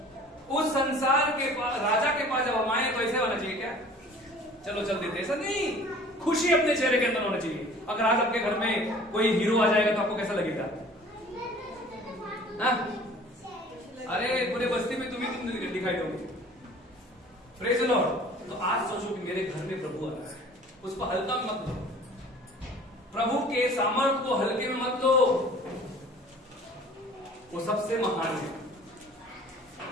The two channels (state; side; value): normal; both; correlation 0.48